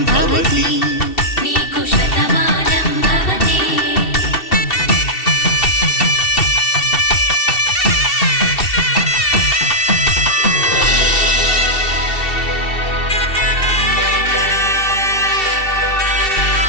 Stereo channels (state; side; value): late; right; 2.7 ms